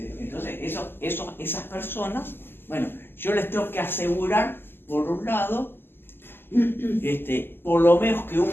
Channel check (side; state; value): right; late; 0.10 ms